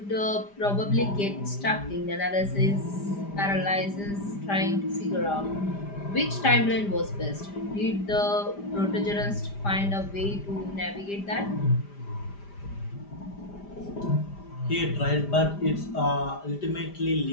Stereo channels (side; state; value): right; late; 5.0 ms